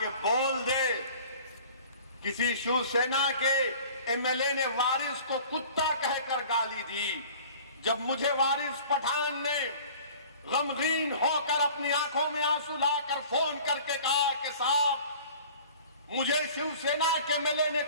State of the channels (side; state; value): both; inverted; correlation -0.46